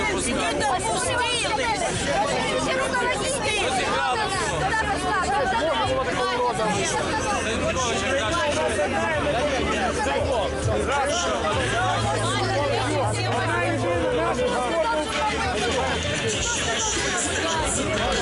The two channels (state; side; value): identical; both; correlation 1.00